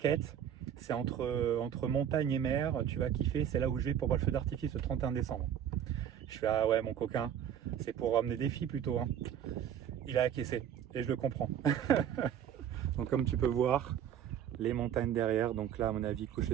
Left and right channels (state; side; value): quieter; left; 9.4 dB